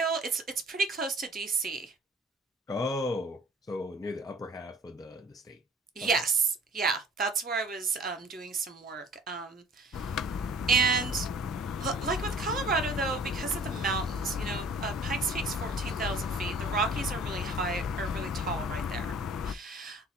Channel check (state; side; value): normal; both; correlation 0.51